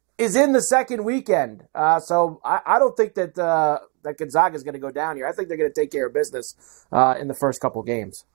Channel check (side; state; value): left; quieter; 34.9 dB